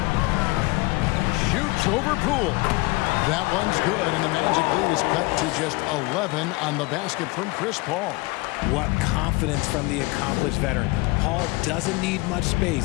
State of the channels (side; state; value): right; quieter; 23.7 dB